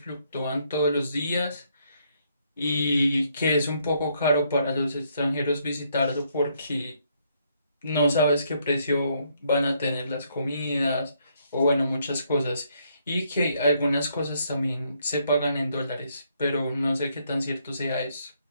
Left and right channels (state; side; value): inverted; both; correlation -0.72